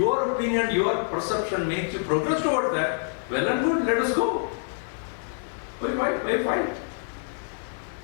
opinion, your perception makes you progress towards that, well and good, let us go. Why fight?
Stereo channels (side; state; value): right; silent; 61 dB below the other